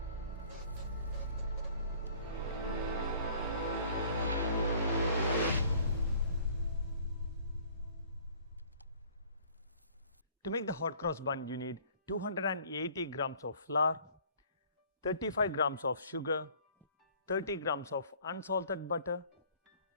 To make the hot cross bun, you need 280 grams of flour, 35 grams of sugar, 30 grams of unsalted butter,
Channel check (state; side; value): inverted; both; correlation -0.54